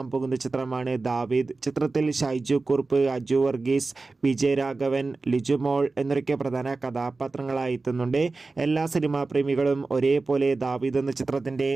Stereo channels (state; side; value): quieter; left; 3.7 dB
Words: പോകുന്ന ചിത്രമാണ് ദാവീദ്. ചിത്രത്തിൽ ഷൈജു കുറുപ്പ്, അജു വർഗീസ്, വിജയരാഘവൻ, ലിജുമോൾ എന്നൊക്കെ പ്രധാന കഥാപാത്രങ്ങളായി എത്തുന്നുണ്ട്. എല്ലാ സിനിമാ പ്രേമികളും ഒരേപോലെ ദാവീദ് എന്ന ചിത്രത്തിൻ്റെ